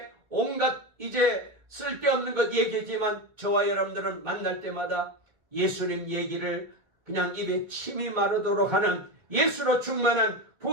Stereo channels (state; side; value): late; left; 1.6 ms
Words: 온갖 이제 쓸데없는 것 얘기지만 저와 여러분들은 만날 때마다 예수님 얘기를 그냥 입에 침이 마르도록 하는 예수로 충만한